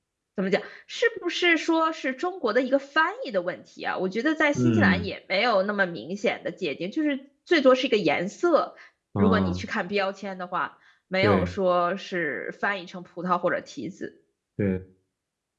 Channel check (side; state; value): both; identical; correlation 1.00